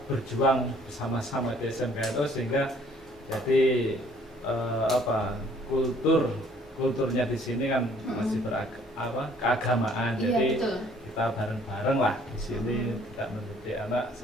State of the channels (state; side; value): normal; both; correlation 0.59